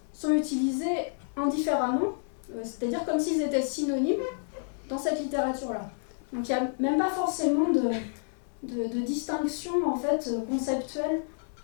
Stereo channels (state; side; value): silent; right; 58 dB below the other